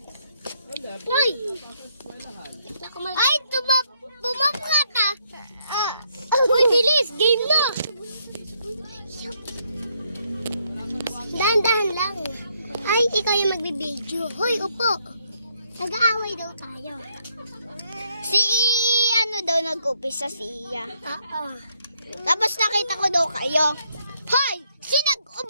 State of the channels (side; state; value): both; inverted; correlation -0.73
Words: Ay! Ay, bumabka ka. Uy, bilis! Game na! Dahan-dahan lang. Ay, ikaw yung magbibideo. Hoy, upo. Nag-aaway daw tayo. Si ano daw nag-upisa si Iya. Oo. Tapos nakita ko daw kayo. Hoy! Sino